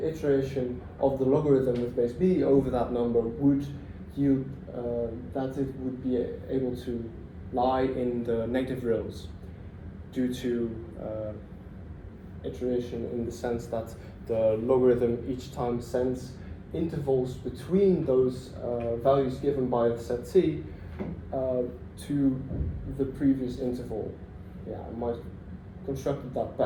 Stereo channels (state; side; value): identical; both; correlation 1.00